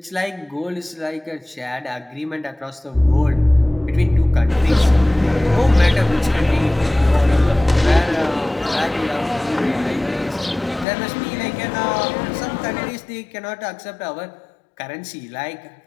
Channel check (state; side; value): drops out; right; at 10.9 s